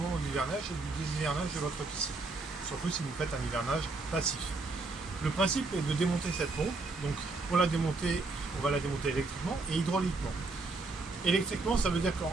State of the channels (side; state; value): left; quieter; 3.5 dB